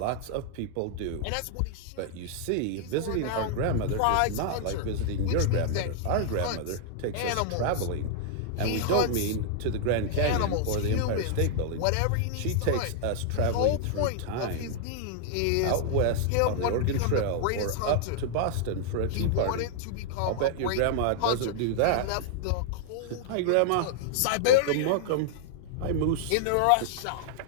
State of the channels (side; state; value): both; different; correlation -0.01